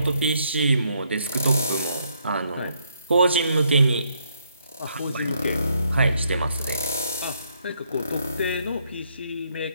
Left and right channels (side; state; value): both; inverted; correlation -0.73